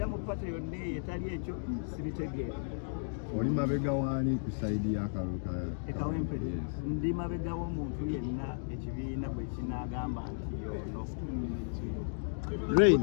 mu pate yonna eyo etali ekyo sibitegeera. Oli mabega waani ku sayidi y'akalulu ka Kawempe? Ndi mabega w'omuntu yenna ekibiina bwe kinaagamba nti yono.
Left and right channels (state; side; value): silent; right; digital silence